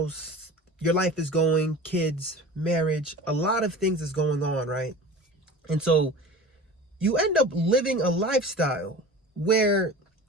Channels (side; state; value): both; normal; correlation 0.37